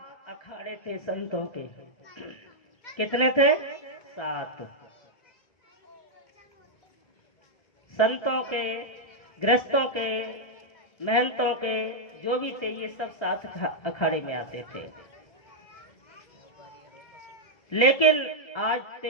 अखाड़े थे संतों के। कितने थे? 7 संतों के, गृहस्थों के, महंतों के, जो भी थे ये सब 7 अखाड़े में आते थे। लेकिन आज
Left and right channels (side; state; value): right; late; 1.3 ms